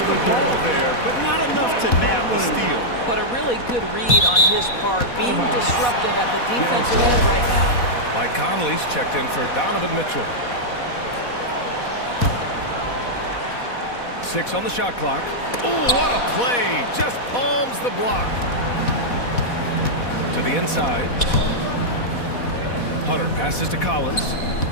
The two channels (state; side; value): late; right; 4.1 ms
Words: the ball there, but not enough to nab the steal. But a really good read on his part, being disruptive at the defensive end right now. Mike Conley's checked in for Donovan Mitchell. 6 on the shot clock. Oh, what a play. Just palms the block. To the inside. Hunter passes to Collins.